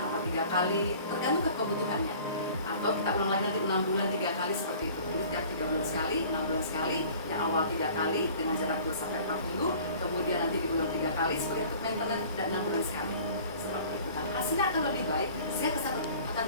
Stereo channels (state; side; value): inverted; both; correlation -0.47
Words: atau 3 kali, tergantung kebutuhannya. Atau kita ulang lagi nanti 6 bulan 3 kali seperti itu. Jadi setiap 3 bulan sekali, 6 bulan sekali, yang awal 3 kali dengan jarak 2-4 minggu, kemudian nanti diulang 3 kali sebagai untuk maintenance, dan 6 bulan sekali. Seperti itu. Dan hasilnya akan lebih baik, sehingga kesehatan